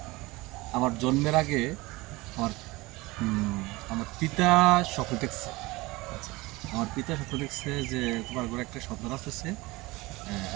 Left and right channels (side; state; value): left; quieter; 21.8 dB